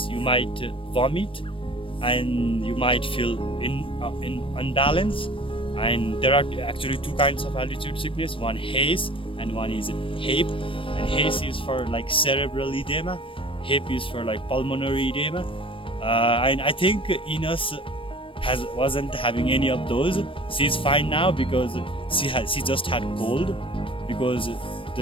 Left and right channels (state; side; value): late; right; 0.25 ms